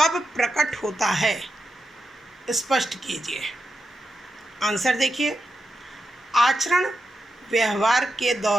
प्रकट होता है? स्पष्ट कीजिए। आंसर देखिए। आचरण व्यवहार के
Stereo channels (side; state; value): both; normal; correlation 0.88